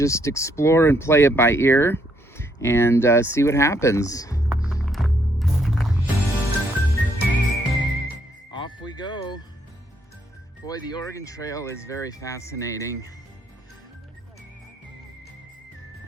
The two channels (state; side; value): normal; both; correlation 0.72